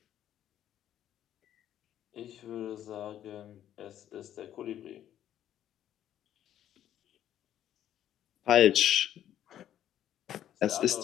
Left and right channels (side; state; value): right; quieter; 11.2 dB